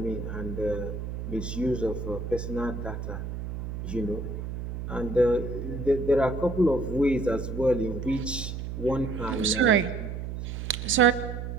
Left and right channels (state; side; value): noise; right; hum, 6 dB below the sound